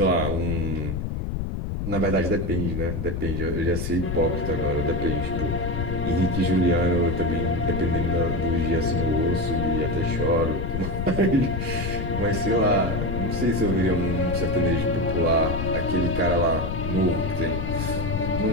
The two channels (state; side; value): noise; left; rumble, 2 dB below the sound